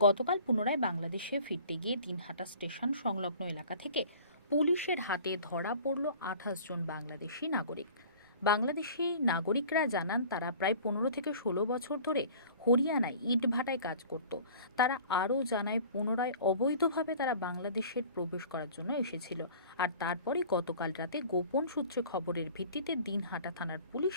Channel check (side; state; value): both; inverted; correlation -0.46